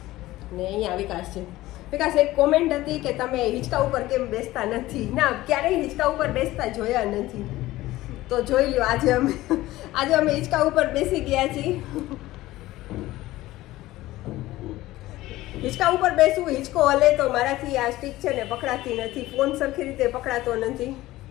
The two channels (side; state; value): right; quieter; 17.0 dB